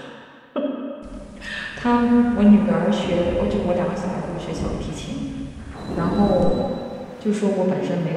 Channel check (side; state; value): both; identical; correlation 1.00